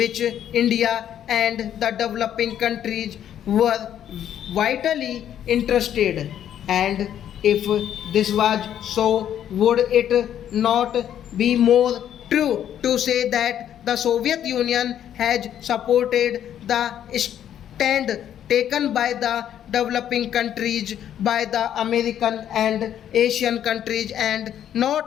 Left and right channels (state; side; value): quieter; right; 10.3 dB